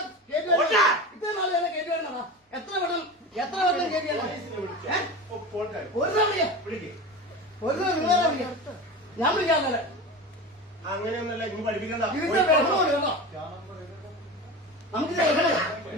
ഇത്ര നാൾ എന്നെ കയറ്റി വരണോ? എത്ര വട്ടം കയറ്റി ഞാൻ വിളിക്കാതെ അങ്ങനെയൊന്നല്ല. ഇനി പഠിപ്പിക്കണ്ട. നമുക്ക്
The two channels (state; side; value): normal; both; correlation 0.28